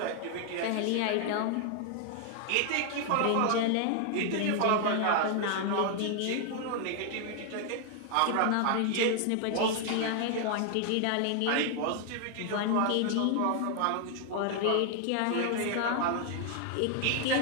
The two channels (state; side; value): different; both; correlation 0.00